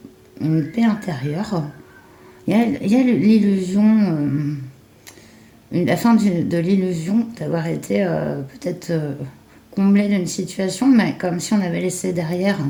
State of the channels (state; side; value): identical; both; correlation 1.00